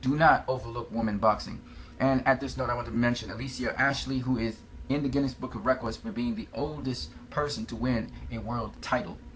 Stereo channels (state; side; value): identical; both; correlation 1.00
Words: not overlook women boxing. And at this note, I want to mention Alicia Ashley, who is in the Guinness Book of Records for being the oldest person to win a world title.